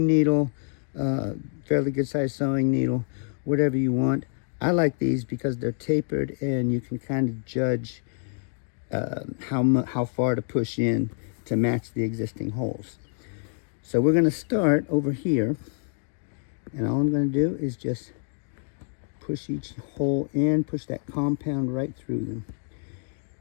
needle, fairly good sized sewing needle, whatever you want. I like these because they're tapered and you can kind of judge how far to push in to match the existing holes. So we're going to start over here, and all I'm going to do is just push each hole in, push that compound right through them.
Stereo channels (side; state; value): right; silent; 60 dB below the other